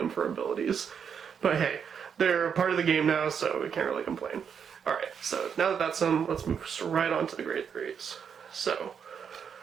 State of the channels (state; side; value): quieter; left; 7.2 dB